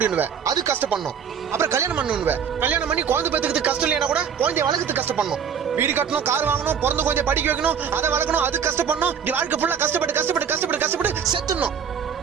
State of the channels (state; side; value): quieter; left; 7.4 dB